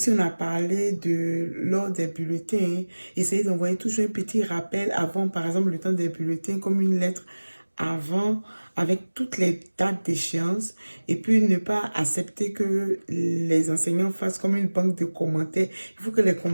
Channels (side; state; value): both; inverted; correlation -1.00